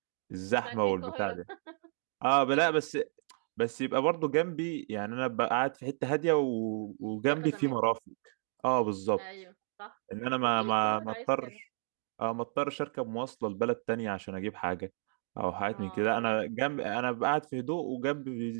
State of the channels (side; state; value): left; silent; 56 dB below the other